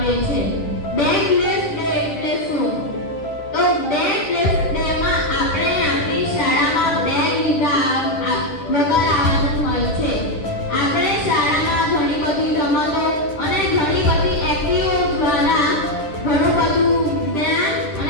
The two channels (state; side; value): late; right; 10 ms